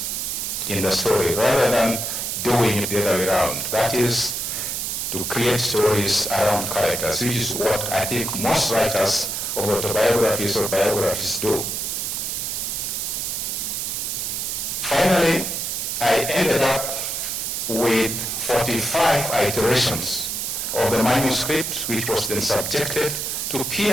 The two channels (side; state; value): right; noise; hiss, 2 dB below the sound